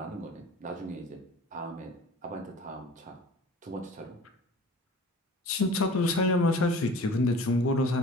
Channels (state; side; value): normal; both; correlation 0.43